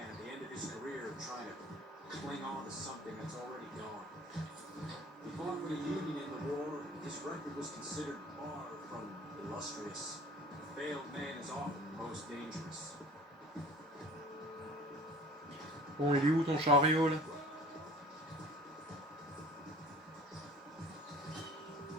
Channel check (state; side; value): normal; both; correlation 0.47